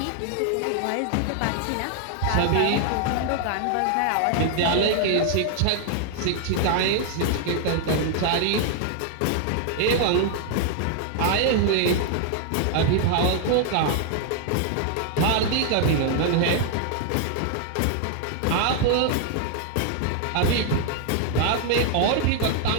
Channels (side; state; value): both; different; correlation 0.00